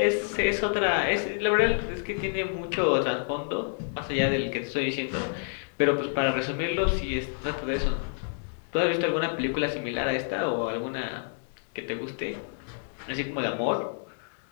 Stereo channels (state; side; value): silent; right; digital silence